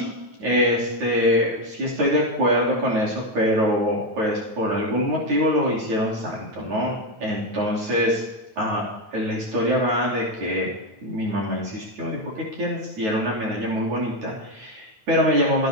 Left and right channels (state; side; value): late; left; 9.4 ms